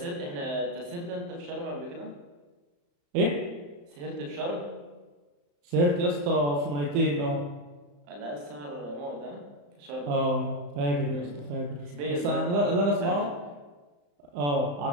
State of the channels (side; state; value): left; late; 35 ms